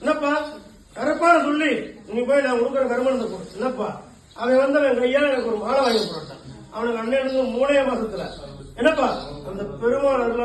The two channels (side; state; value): both; identical; correlation 1.00